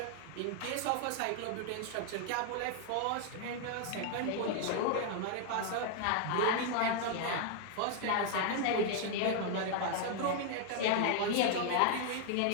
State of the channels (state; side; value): different; both; correlation 0.00